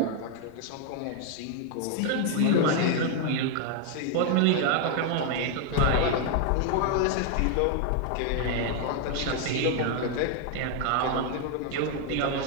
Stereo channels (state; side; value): different; both; correlation 0.00